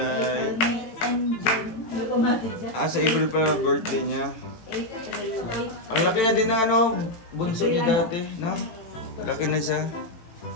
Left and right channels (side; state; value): right; late; 18 ms